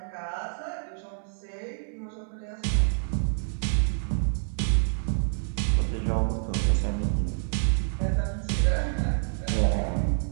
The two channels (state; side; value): silent; left; 60 dB below the other